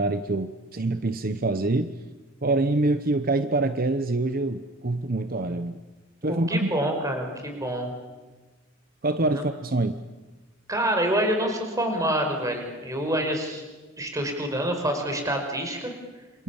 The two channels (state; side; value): normal; both; correlation 0.42